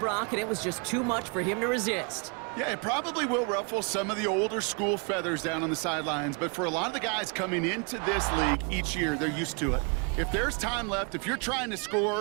and it was just too much for him to resist. Yeah, it probably will ruffle some of the older school feathers down on the sidelines, but for a lot of the guys coming into this league each year, they're used to it. If there's time left, if you're trying to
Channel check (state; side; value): quieter; left; 35.3 dB